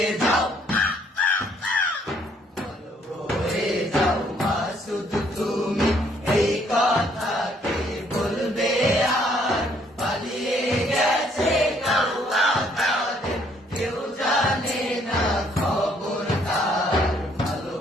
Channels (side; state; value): both; normal; correlation 0.66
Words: যাও, ভালো হয়ে যাও মাসুদ তুমি, এই কথা কে বলবে আর? পালিয়ে গেছে গাওয়া কালে, কেউ জানে না খবর তার। ভালো